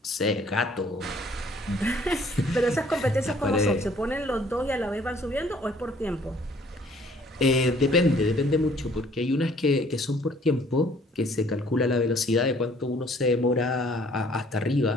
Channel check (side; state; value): both; normal; correlation 0.58